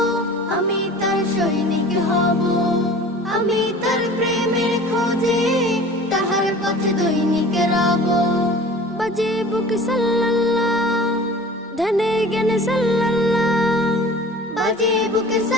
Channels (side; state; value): both; normal; correlation 0.42